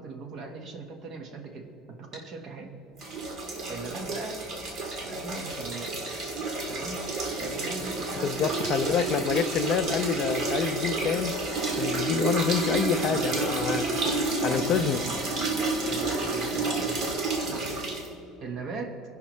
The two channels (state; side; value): normal; both; correlation 0.39